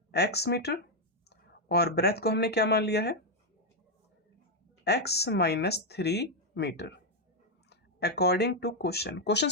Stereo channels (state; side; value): normal; both; correlation 0.01